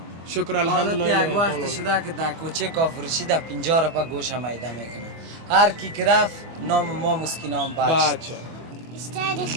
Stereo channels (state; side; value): late; left; 24 ms